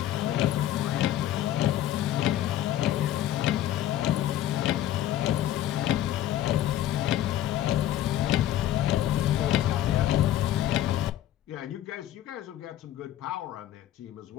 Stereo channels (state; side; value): quieter; right; 12.6 dB